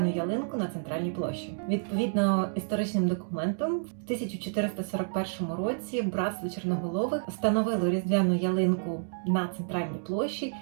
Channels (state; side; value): silent; left; digital silence